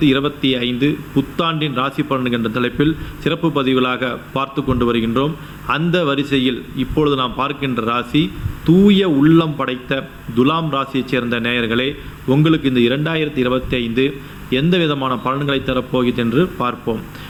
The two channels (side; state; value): both; identical; correlation 1.00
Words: புத்தாண்டின் ராசி பலன்கள் என்ற தலைப்பில் சிறப்பு பதிவுகளாக பார்த்து கொண்டு வருகின்றோம். அந்த வரிசையில் இப்பொழுது நாம் பார்க்கின்ற ராசி தூய உள்ளம் படைத்த துலாம் ராசியைச் சேர்ந்த நேயர்களே, உங்களுக்கு இந்த 2025 எந்த விதமான பலன்களை தரப்போகிறது என்று பார்ப்போம்.